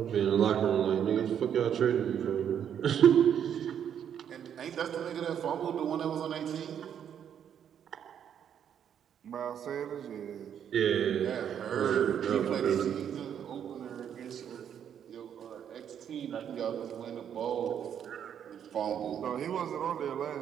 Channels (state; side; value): quieter; left; 8.9 dB